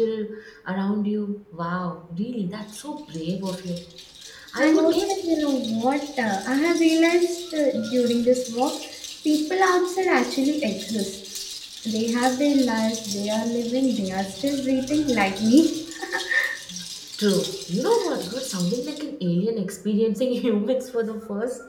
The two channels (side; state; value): both; identical; correlation 1.00